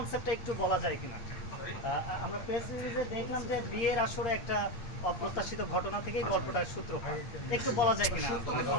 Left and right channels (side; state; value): right; late; 8.4 ms